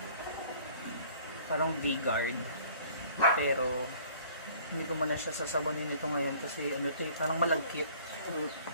Parang V-guard. Pero hindi ko muna siya sasabonin ito ngayon kasi ano ito eh, parang malagkit.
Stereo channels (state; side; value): inverted; both; correlation -0.53